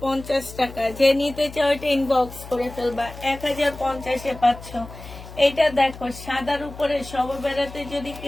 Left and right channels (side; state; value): left; noise; hum, 15 dB below the sound